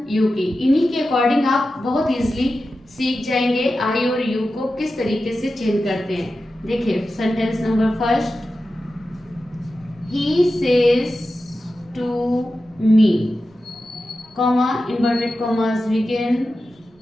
यू की। इन्हीं के अकॉर्डिंग आप बहुत इजीली सीख जाएंगे आई और यू को किस तरीके से चेंज करते हैं। देखिए sentence number first, he says to me, comma inverted commas begin,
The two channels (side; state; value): both; normal; correlation 0.92